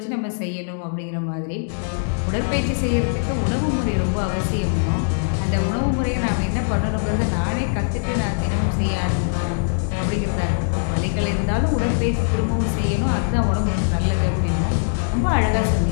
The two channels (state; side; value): silent; right; digital silence